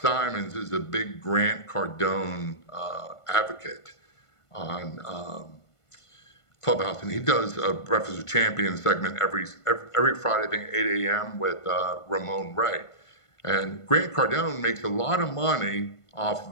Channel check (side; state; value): right; late; 1.5 ms